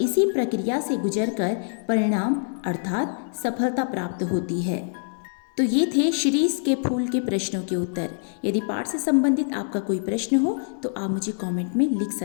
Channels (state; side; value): silent; right; digital silence